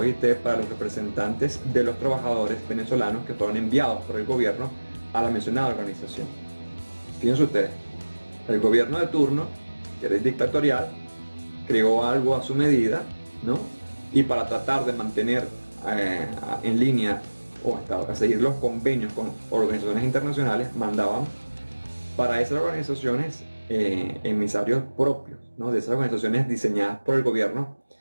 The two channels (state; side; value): inverted; both; correlation -1.00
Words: para los representantes de los trabajadores venezolanos que fueron enviados por el gobierno a la mencionada organización. Fíjense ustedes, el gobierno de turno, que era dictatorial, creó algo a su medida, ¿no? Y para tratar de mantener en línea o a seguir los convenios con organizaciones internacionales, mandaban para esas organizaciones emisarios propios, ¿no? De esas organizaciones diseñadas por el gobierno